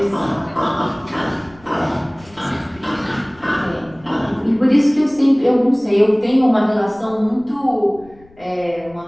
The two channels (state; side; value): noise; left; rumble, 26 dB below the sound